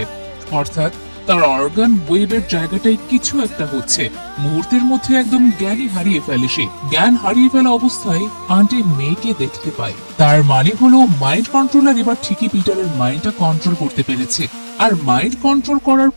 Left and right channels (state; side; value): inverted; both; correlation -1.00